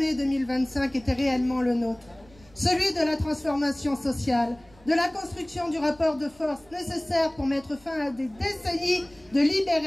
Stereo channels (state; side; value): noise; right; rumble, 27 dB below the sound